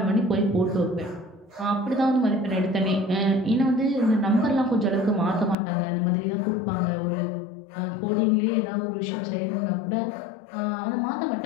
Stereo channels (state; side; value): drops out; right; at 5.6 s